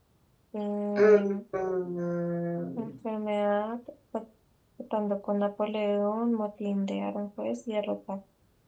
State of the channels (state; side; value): identical; both; correlation 1.00